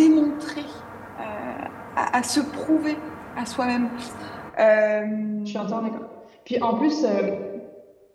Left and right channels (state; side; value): identical; both; correlation 1.00